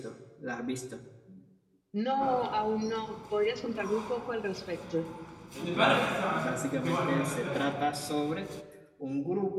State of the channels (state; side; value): identical; both; correlation 1.00